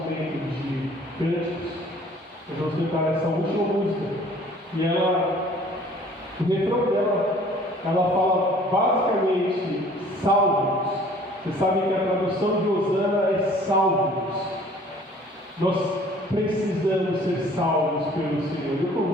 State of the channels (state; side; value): normal; both; correlation 0.53